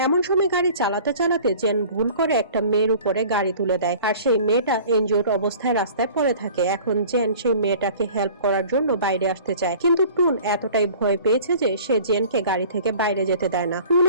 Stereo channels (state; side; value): inverted; both; correlation -0.46